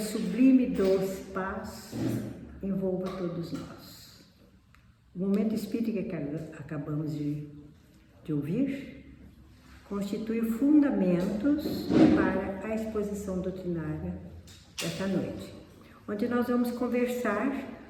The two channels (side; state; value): both; identical; correlation 1.00